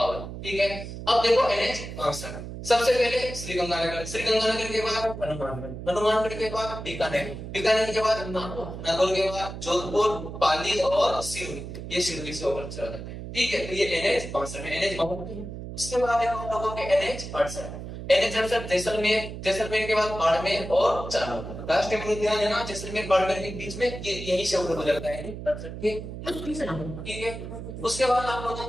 ठीक है। अब देखो NH 62। सबसे पहले श्रीगंगानगर, श्रीगंगानगर के बाद हनुमानगढ़, हनुमानगढ़ के बाद बीकानेर, बीकानेर के बाद नागौर, नागौर के बाद जोधपुर, पाली और सिरोही। ये सिरोही से होकर चला जाता है। ठीक है। तो ये NH 62 में NH 52। उसके बाद है हम लोगों के NH 68। NH 68 जैसलमेर, जैसलमेर के बाद बाड़मेर और जालौर। राष्ट्रीय उद्यान है ना जैसलमेर बाड़मेर के बीच में, ये यही से होकर गुजरता है। ठीक है। उसके बाद आप लोगों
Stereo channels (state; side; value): noise; right; hum, 9 dB below the sound